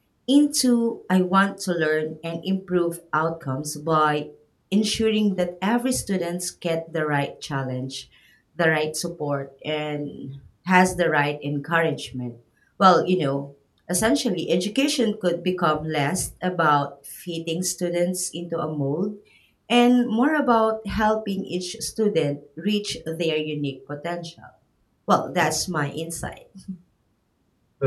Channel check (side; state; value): both; identical; correlation 1.00